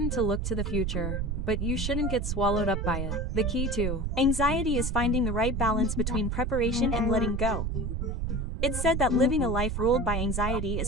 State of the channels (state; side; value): noise; right; rumble, 1 dB below the sound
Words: to look to the future, but you shouldn't get swallowed up by it. The key to anxiety is finding the right balance between preparation and letting go. It's said that living a life ruled by anxiety